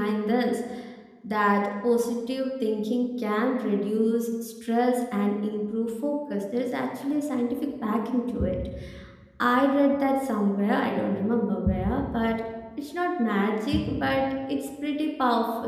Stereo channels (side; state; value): both; identical; correlation 1.00